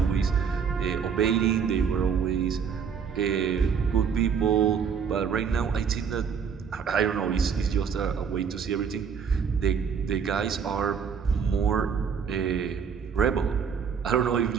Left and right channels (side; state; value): left; quieter; 6.7 dB